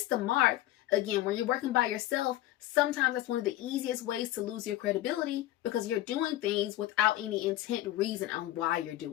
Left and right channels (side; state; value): right; quieter; 14.9 dB